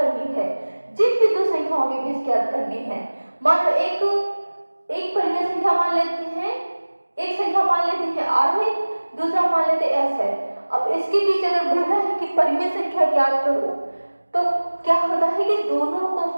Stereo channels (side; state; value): both; inverted; correlation -1.00